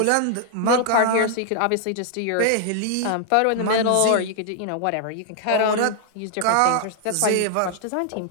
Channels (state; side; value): different; both; correlation 0.00